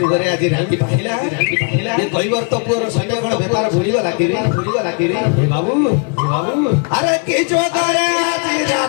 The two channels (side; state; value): right; quieter; 38.0 dB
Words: आज राती पाहिला ये कैवर्त पुर संगे कोन व्यापार भूली गला कि हे बाबू अरे के जुगरे आज